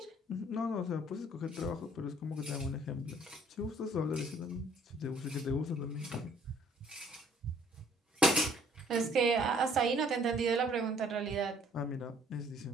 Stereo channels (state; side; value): normal; both; correlation 0.59